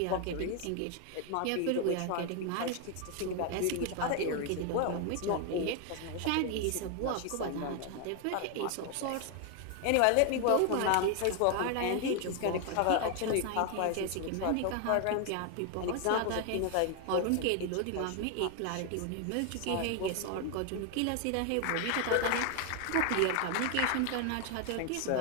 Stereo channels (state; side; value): different; both; correlation 0.01